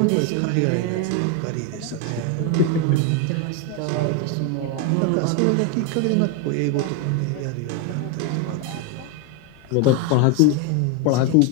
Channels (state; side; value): different; both; correlation 0.01